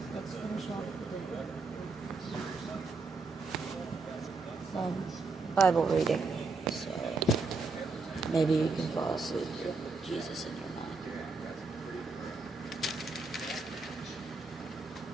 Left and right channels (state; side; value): quieter; left; 3.8 dB